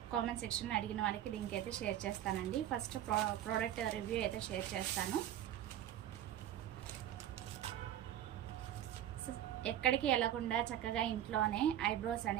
కామెంట్ సెక్షన్లో అడిగిన వాళ్ళకి లింక్ అయితే షేర్ చేస్తానండి. ఫస్ట్ ప్రోడక్ట్ రివ్యూ అయితే షేర్ చేస్తాను. ఎక్కడికి వెళ్ళకుండా చక్కగా ఇంట్లోనే ఐబ్రోస్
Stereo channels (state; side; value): quieter; left; 11.5 dB